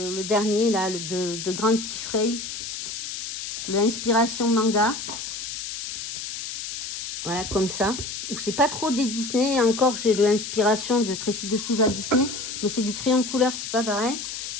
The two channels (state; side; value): noise; left; hiss, 6 dB below the sound